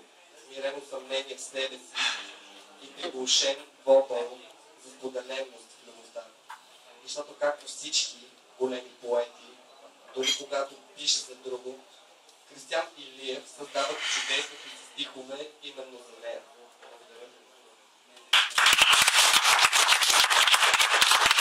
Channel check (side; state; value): both; identical; correlation 1.00